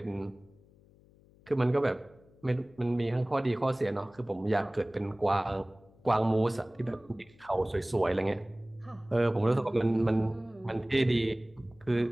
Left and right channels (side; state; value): left; noise; hum, 28 dB below the sound